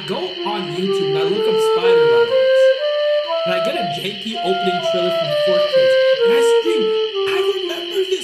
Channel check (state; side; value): identical; both; correlation 1.00